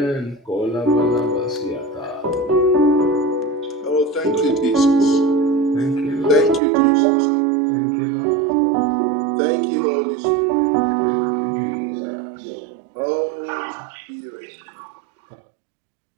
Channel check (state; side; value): drops out; left; at 6.6 s